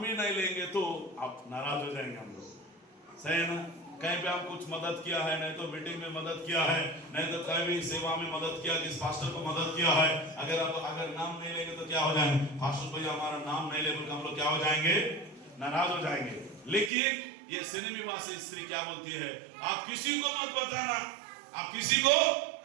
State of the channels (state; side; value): drops out; left; at 16.9 s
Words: भी नहीं लेंगे तो आप नाराज हो जाएंगे हम लोग, सही है ना? कहीं पे हम कुछ मदद किया है, नहीं तो मीटिंग में मदद किया है, नहीं तो कहीं भी सेवा में मदद किया, किस पास्टर को मदद किया है, अगर नाम नहीं लेंगे तो क्या हो जाएंगे? पास्टर भैया हमारा नाम नहीं ले बोलकर हम लोग क्या हो जाएंगे? नाराज हो जाएंगे। लेकिन ये सिनेमीवासी स्त्री क्या बोलती है? आप किसी को मत बताना, आप किसी को,